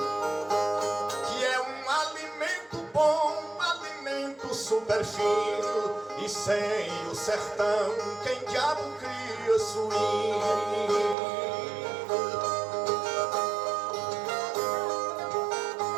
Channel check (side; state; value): left; drops out; at 11.2 s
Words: que é um alimento bom, um alimento super fino. E sem o sertão, quem diabo cria suíno?